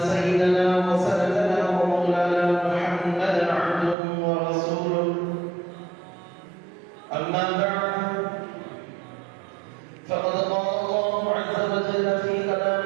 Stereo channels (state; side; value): drops out; left; at 4.0 s